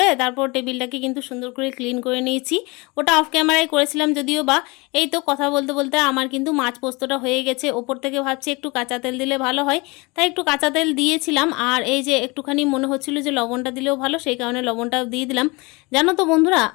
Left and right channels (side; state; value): right; quieter; 26.1 dB